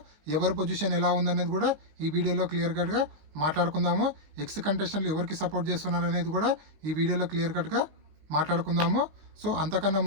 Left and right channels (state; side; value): late; left; 19 ms